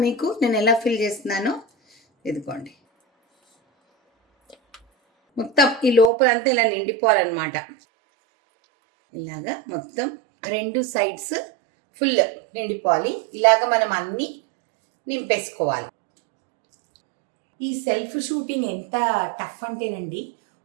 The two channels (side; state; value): left; drops out; at 6.1 s